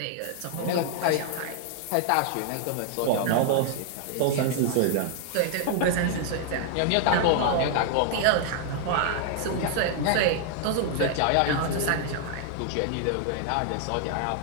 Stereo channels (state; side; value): different; both; correlation 0.00